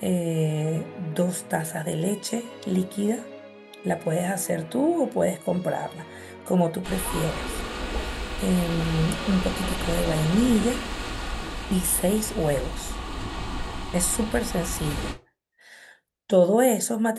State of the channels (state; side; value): identical; both; correlation 1.00